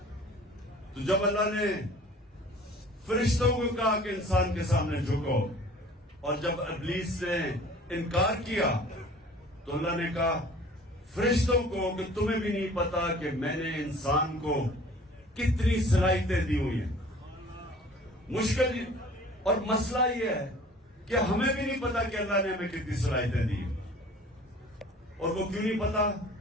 تو جب اللہ نے فرشتوں کو کہا کہ انسان کے سامنے جھکو، اور جب ابلیس نے انکار کیا تو اللہ نے کہا فرشتوں کو کہ تمہیں بھی نہیں پتا کہ میں نے انسان کو کتنی صلاحیتیں دی ہوئی ہیں. مشکل اور مسئلہ یہ ہے کہ ہمیں بھی نہیں پتا کہ اللہ نے ہمیں کتنی صلاحیتیں دی ہیں. اور وہ کیوں نہیں پتا؟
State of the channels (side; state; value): both; normal; correlation 0.48